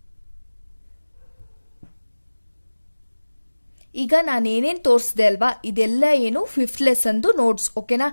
ಈಗ ನಾನೇನೇನ್ ತೋರಿಸಿದೆ ಅಲ್ವಾ, ಇದೆಲ್ಲ ಏನು 5th ಲೆಸನ್ದು ನೋಟ್ಸ್, ಓಕೆನಾ.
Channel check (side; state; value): both; inverted; correlation -1.00